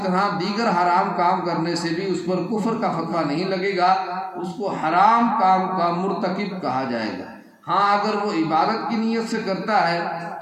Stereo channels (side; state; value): both; identical; correlation 1.00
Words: طرح دیگر حرام کام کرنے سے بھی اس پر کفر کا فتویٰ نہیں لگے گا، اس کو حرام کام کا مرتکب کہا جائے گا۔ ہاں اگر وہ عبادت کی نیت سے کرتا ہے